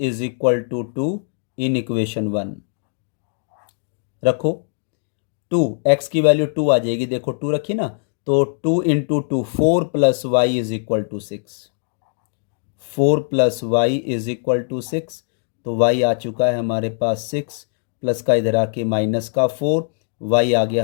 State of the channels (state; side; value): silent; right; digital silence